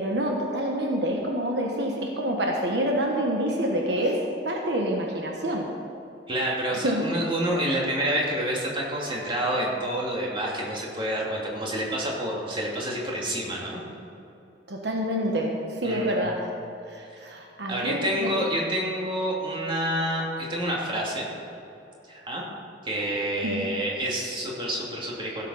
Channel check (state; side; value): normal; both; correlation 0.23